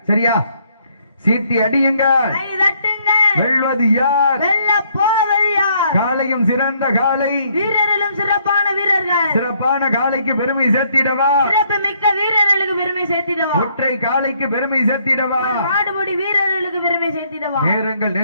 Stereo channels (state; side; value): inverted; both; correlation -0.68